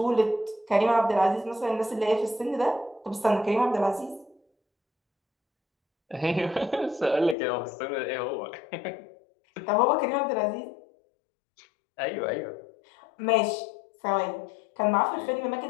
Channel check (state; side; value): drops out; right; at 7.4 s